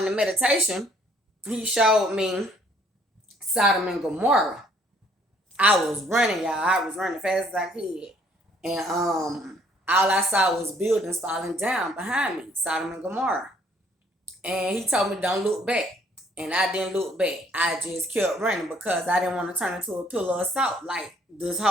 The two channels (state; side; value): normal; both; correlation 0.63